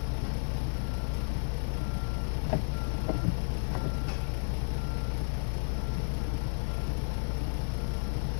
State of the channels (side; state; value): right; silent; 56 dB below the other